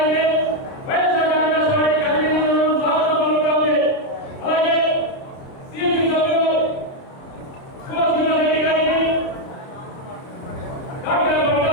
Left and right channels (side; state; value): right; late; 30 ms